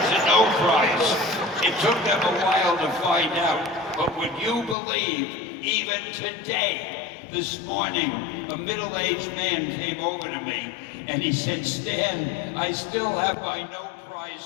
a no prize. It took them a while to find out. But would you believe, even today, this morning, a middle-aged man came over to me, and he said, Stan, I still have my no prize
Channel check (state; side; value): drops out; right; at 4.8 s